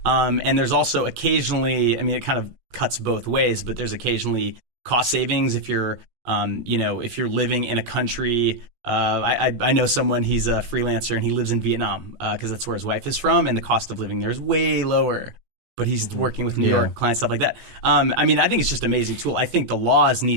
And there's also occasionally, I mean, it kind of cuts both ways, but there's occasionally cost savings if you're, you know, if you're living in a country. I know someone, he's a freelancer and he lives in Vietnam because that's where his wife is from, and the cost of living there is way lower. But he's working with New York clients, stuff like that. I mean, I think it's just an amazing tool. I think the laws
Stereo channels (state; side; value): late; left; 17 ms